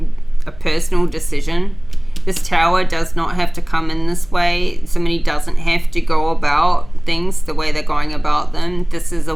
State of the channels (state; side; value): noise; right; hum, 22 dB below the sound